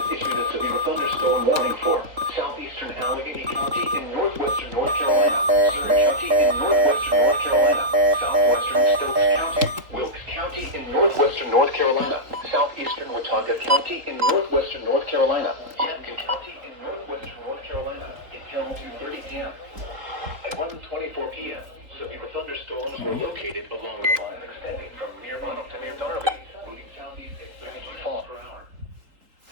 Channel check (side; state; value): left; late; 3.9 ms